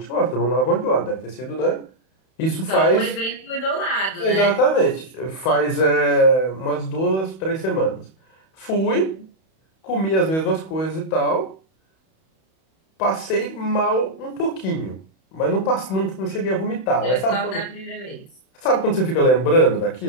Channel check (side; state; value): right; late; 31 ms